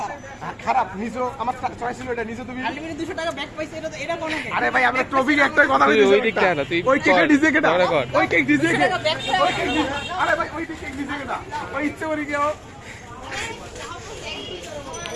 খারাপ নিছো আমার চয়েস ছিল এটা নিছো তুমি আলটিমেটলি 200 টাকা ব্যাক পাইছে এটা কোন কেক আরে ভাই আমরা ট্রফির একটা কথা বলছি ওই দিকটা না তুই ওই কেকটা ডিজে কেটা ওই কেক ডিজে কে ব্যাক আরে ভাই ওই কেক ডিজে কেটা ওই ইচ্ছে করে কেউ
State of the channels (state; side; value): identical; both; correlation 1.00